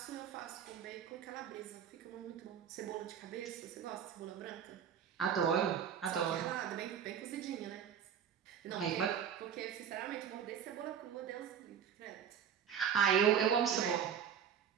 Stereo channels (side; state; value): left; quieter; 8.2 dB